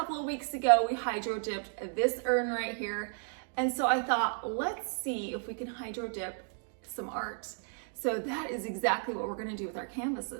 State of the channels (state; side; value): silent; left; 56 dB below the other